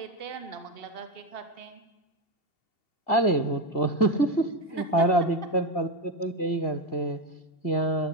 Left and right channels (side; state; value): right; late; 2.7 ms